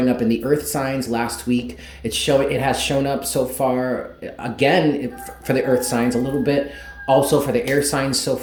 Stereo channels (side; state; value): both; identical; correlation 1.00